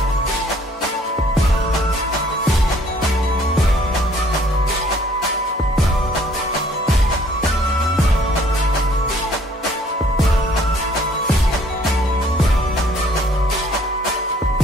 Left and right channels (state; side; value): normal; both; correlation 0.60